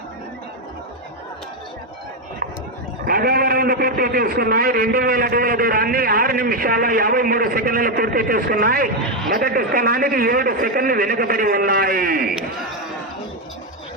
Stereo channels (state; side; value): normal; both; correlation 0.06